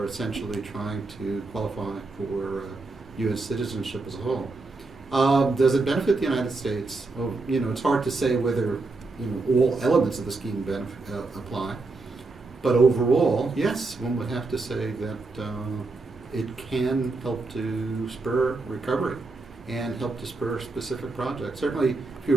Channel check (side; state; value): left; quieter; 3.6 dB